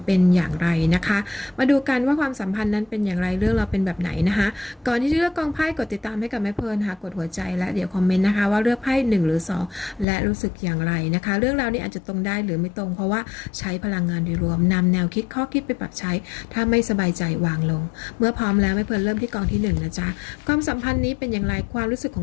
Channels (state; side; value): drops out; right; at 10.1 s